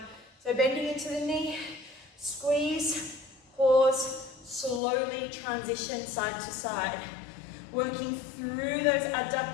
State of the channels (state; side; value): drops out; right; at 4.8 s